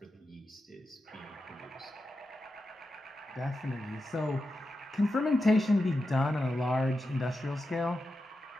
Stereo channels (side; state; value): both; normal; correlation 0.90